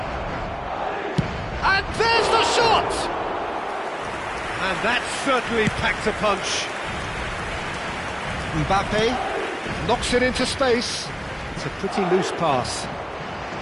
And there's the shot! And that certainly packed a punch. Mbappe knocks it into space. It's a pretty loose pass.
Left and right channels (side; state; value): both; identical; correlation 1.00